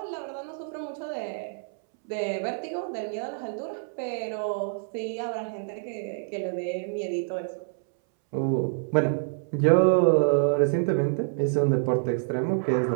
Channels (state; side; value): silent; left; 60 dB below the other